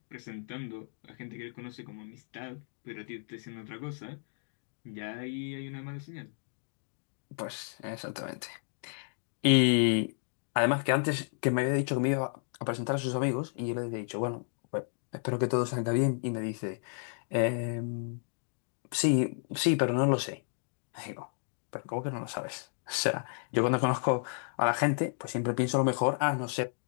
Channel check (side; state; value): right; silent; digital silence